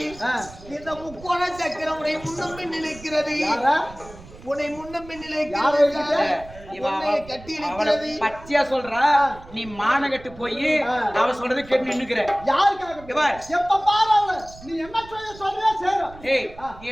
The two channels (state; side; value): noise; right; rumble, 19 dB below the sound